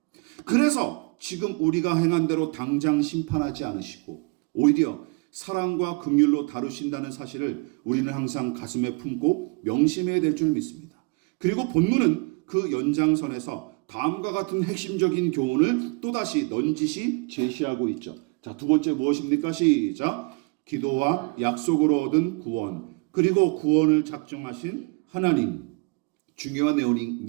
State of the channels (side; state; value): left; quieter; 30.5 dB